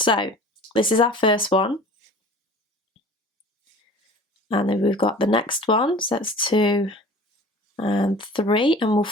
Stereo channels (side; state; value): both; normal; correlation 0.43